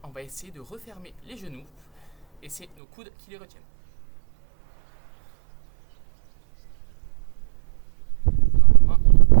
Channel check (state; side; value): drops out; left; at 2.7 s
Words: on va essayer de refermer les genoux et c'est nos coudes qui les retiennent. Normalement,